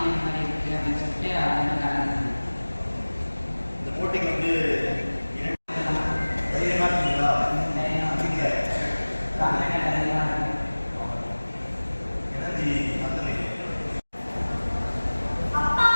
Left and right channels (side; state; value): both; inverted; correlation -1.00